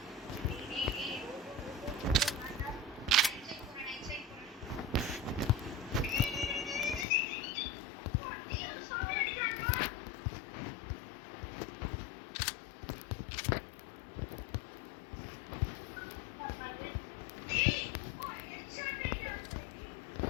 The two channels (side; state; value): right; drops out; at 7.1 s